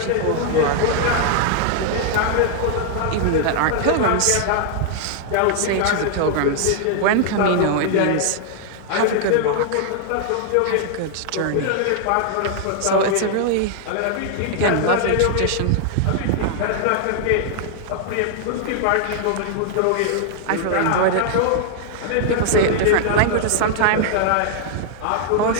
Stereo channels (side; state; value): both; different; correlation -0.01